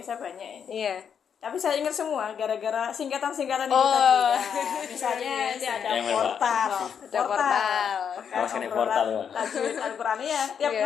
banyak ini. Iya. Tapi saya ingat semua gara-gara singkatan-singkatan itu tadi. Ya. Misalnya ini ada portal. Portal ya. Tajwid Al-Quran ya. Tiap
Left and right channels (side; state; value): right; quieter; 7.5 dB